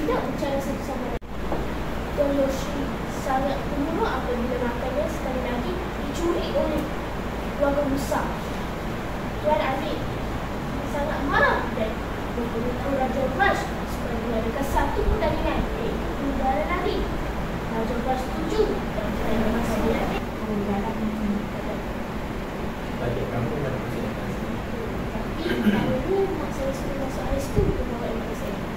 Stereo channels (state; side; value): identical; both; correlation 1.00